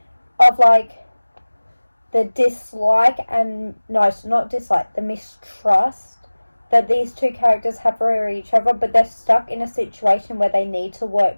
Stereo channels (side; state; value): both; inverted; correlation -1.00